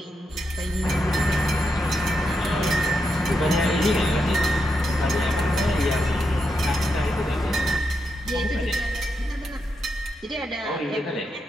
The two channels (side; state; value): both; normal; correlation 0.84